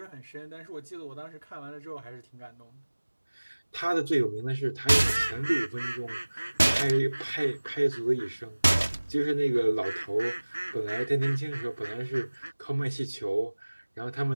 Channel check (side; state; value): both; inverted; correlation -1.00